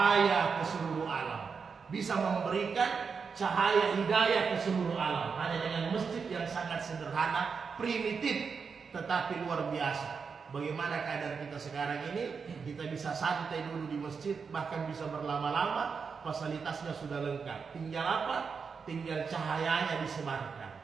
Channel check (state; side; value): quieter; left; 5.6 dB